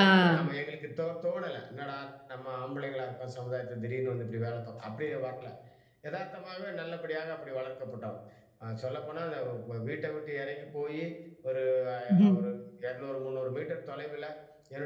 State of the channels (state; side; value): identical; both; correlation 1.00